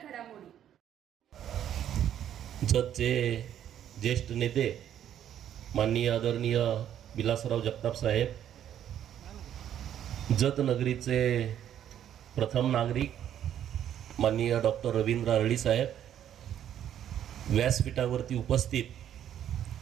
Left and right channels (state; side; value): quieter; left; 10.4 dB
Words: घडामोडी। जतचे ज्येष्ठ नेते माननीय आदरणीय विलासराव जगताप साहेब, जत नगरीचे प्रथम नागरिक माननीय डॉक्टर रवींद्र अरळी साहेब, व्यासपीठावरती उपस्थित